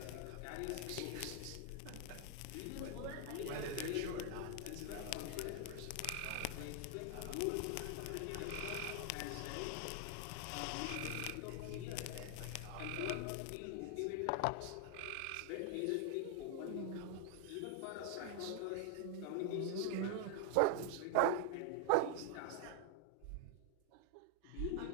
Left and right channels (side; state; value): both; different; correlation 0.00